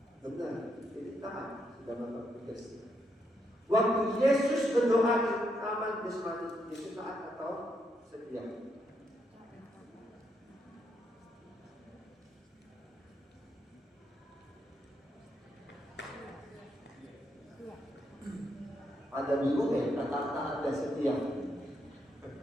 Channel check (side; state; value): both; normal; correlation 0.79